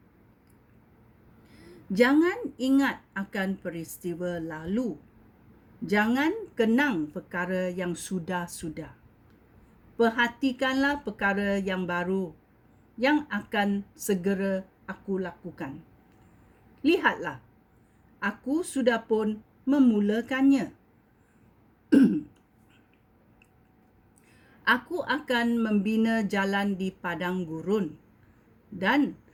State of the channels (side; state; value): both; identical; correlation 1.00